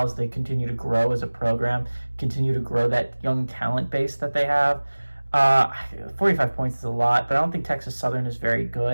as they continue to grow as a program, continue to grow that young talent base that they have. 45 points is a lot, but I don't think Texas Southern is very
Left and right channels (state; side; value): inverted; both; correlation -1.00